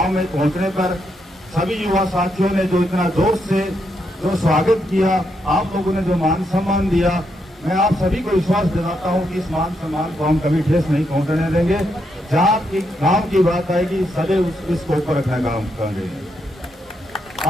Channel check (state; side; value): normal; both; correlation 0.80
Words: में पहुंचने पर सभी युवा साथियों ने जो इतना जोश से जो स्वागत किया, आप लोगों ने जो मान सम्मान दिया, मैं आप सभी को विश्वास दिलाता हूं कि इस मान सम्मान को हम कभी ठेस नहीं पहुंचने देंगे। जहां की गांव की बात आएगी, सदैव इसको ऊपर रखना काम करेंगे।